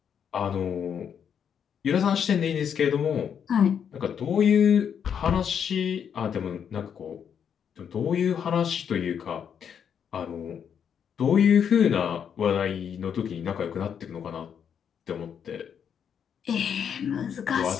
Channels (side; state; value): right; quieter; 7.9 dB